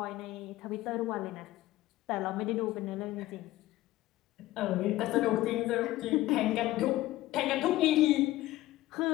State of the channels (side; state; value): right; quieter; 16.4 dB